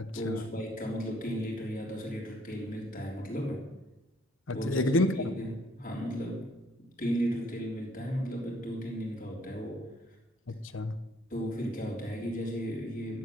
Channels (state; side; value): normal; both; correlation 0.64